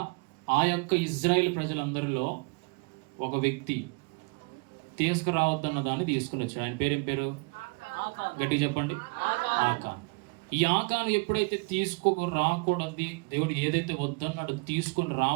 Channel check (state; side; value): quieter; left; 31.0 dB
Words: ఆ యొక్క ఇజ్రాయెల్ ప్రజలందరిలో ఒక వ్యక్తి తీసుకురావద్దన్న దాన్ని తీసుకుని వచ్చాడు. ఆయన పేరేం పేరు? గట్టిగా చెప్పండి. ఆకాన్. ఈ ఆకాను ఎప్పుడైతే తీసుకొని రాకూడదు, దేవుడు ఏదైతే వద్దన్నాడు తీసుకొని